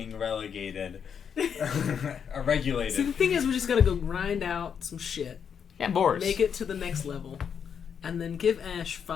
relegated. Or regulated. So the thing is, we just gotta go grind out some shit. Yeah, Boris. Make it to the next level. And then give Ash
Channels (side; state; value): right; quieter; 7.4 dB